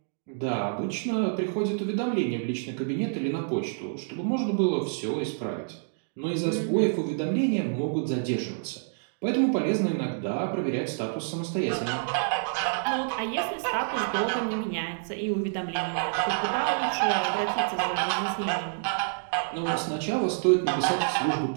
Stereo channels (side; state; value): left; silent; digital silence